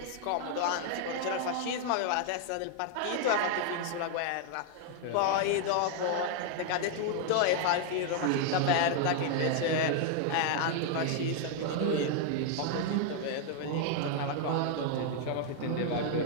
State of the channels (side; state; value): both; different; correlation 0.00